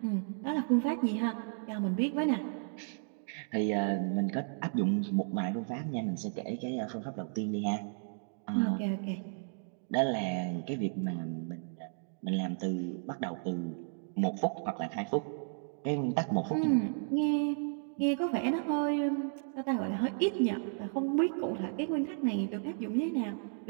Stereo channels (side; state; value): left; silent; digital silence